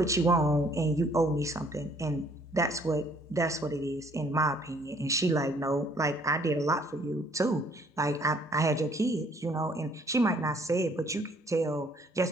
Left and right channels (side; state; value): both; normal; correlation 0.61